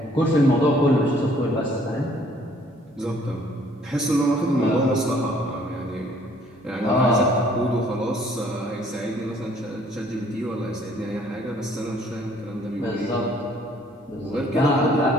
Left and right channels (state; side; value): normal; both; correlation 0.60